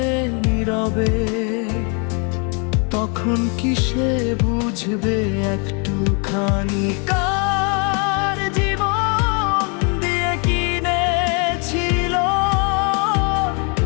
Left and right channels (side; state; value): right; quieter; 36.1 dB